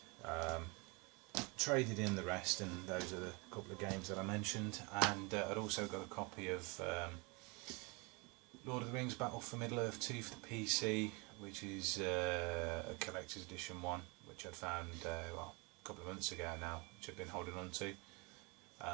Traded in the rest, and those are the couple of games that I mentioned, and I'd also got a copy of Lord of the Rings Battle for Middle-earth 2 for the PC, which is a collector's edition one, which I'd found well, a couple of months ago now, which I've been holding on to,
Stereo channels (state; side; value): quieter; left; 28.8 dB